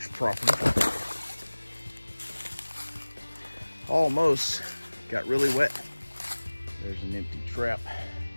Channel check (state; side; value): inverted; both; correlation -1.00